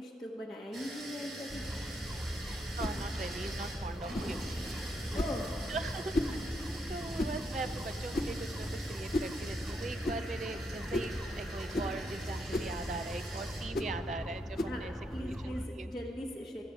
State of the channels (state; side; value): normal; both; correlation 0.78